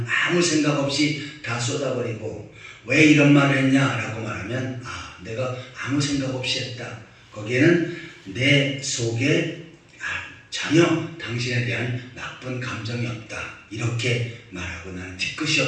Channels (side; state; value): both; identical; correlation 1.00